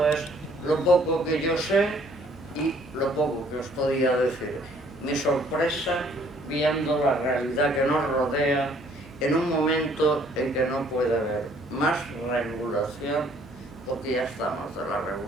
es lo poco que yo sé y lo poco que os podía decir. Mi sorpresa viendo la realidad que nos rodea en un momento en que no puede haber más regulación, porque ya estamos de la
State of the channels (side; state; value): both; normal; correlation 0.61